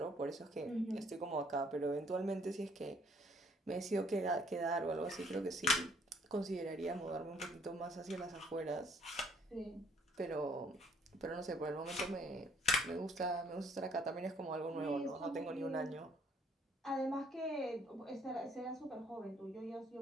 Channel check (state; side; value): normal; both; correlation 0.63